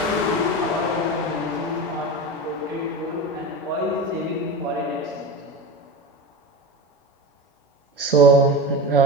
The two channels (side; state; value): both; normal; correlation 0.25